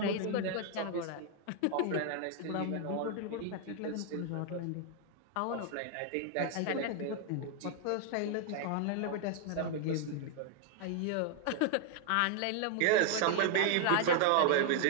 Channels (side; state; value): both; different; correlation 0.00